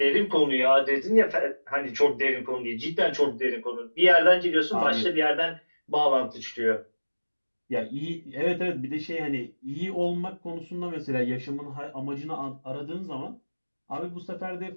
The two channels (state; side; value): inverted; both; correlation -1.00